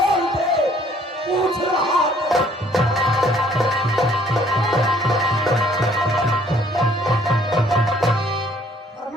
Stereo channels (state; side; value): normal; both; correlation 0.61